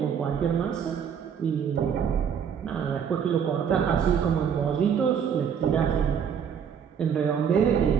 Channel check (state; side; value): quieter; left; 7.7 dB